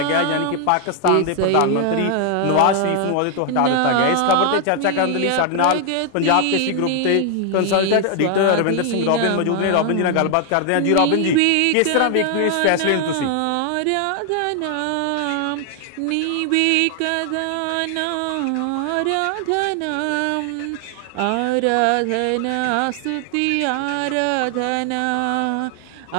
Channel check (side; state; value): both; different; correlation 0.00